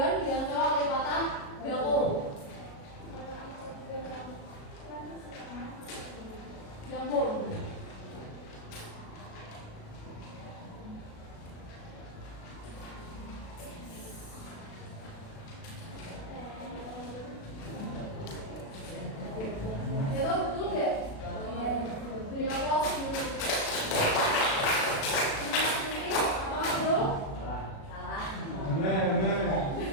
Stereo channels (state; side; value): late; right; 36 ms